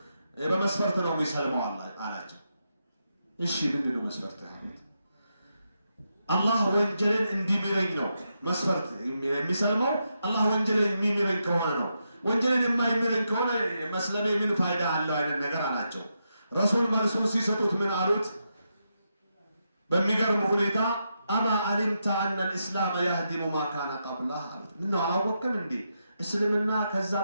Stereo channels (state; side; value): inverted; both; correlation -0.84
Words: በመስፈርት ነው የሚሰልመው አላቸው። እሺ ምንድን ነው መስፈርት? አላህ ወንጀልን እንዲምረኝ ነው መስፈርት የሚሰልመው። አላህ ወንጀልን የሚምረኝ ከሆነ ነው። ወንጀልን የማይምረኝ ከሆነ መስለሜ ምን ፋይዳ አለው አይነት ነገር አላቸው። ረሱል መልሱን ሲሰጡት ምን አሉት? በሚገርም ሁኔታ አማ አሊምተ አነ ልእስላም ያህዲሙ ማ ካነ ቀብላህ አሉት። ምነው አላወቅም እንዴ እስልምና ከዛ